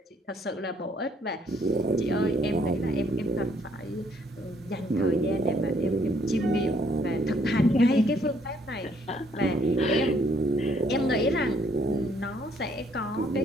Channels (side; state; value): both; normal; correlation 0.66